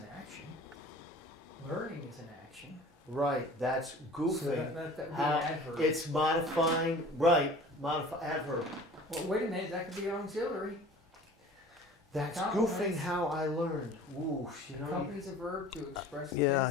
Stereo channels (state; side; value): normal; both; correlation 0.45